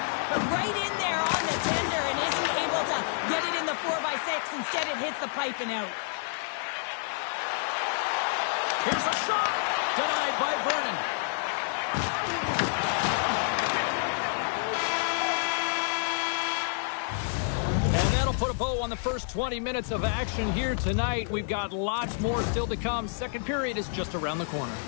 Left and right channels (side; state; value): right; silent; 59 dB below the other